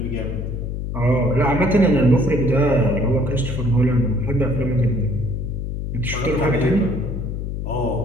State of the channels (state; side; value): noise; left; hum, 4 dB below the sound